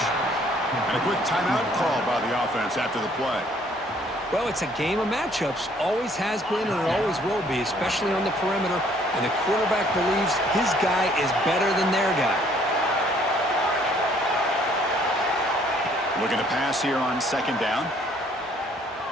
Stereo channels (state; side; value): normal; both; correlation 0.61